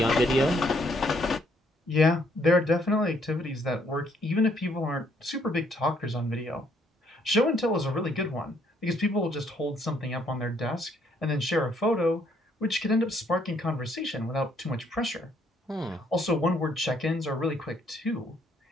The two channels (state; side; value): normal; both; correlation 0.68